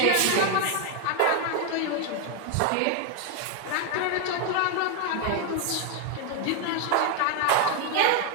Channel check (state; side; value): different; both; correlation 0.01